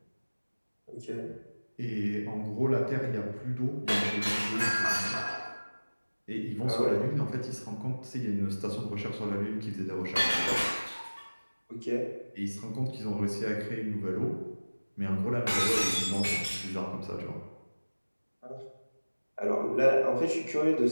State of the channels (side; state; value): both; inverted; correlation -1.00